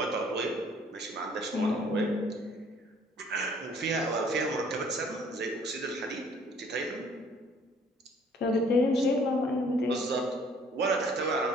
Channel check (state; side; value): normal; both; correlation 0.58